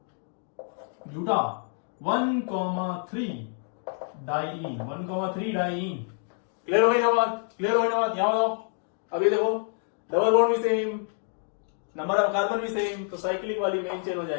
ब्यूटा 1,3 डाइईन, 1,3 डाइईन। क्लियर हो गई ना बात? यहां बताओ। अभी देखो डबल बॉन्ड भी सेम, नंबर ऑफ कार्बन भी सेम, तो साइक्लिक वाली मेन चेन हो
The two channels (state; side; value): silent; right; 57 dB below the other